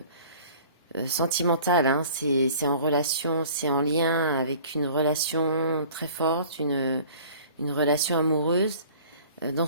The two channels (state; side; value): inverted; both; correlation -0.48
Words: sentimental. Hein. C'est en relation, c'est en lien avec une relation très forte, une relation amoureuse. Dans